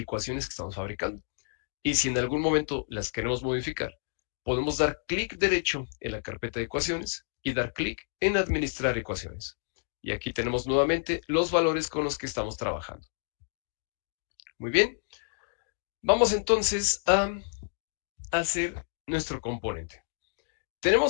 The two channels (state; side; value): silent; right; digital silence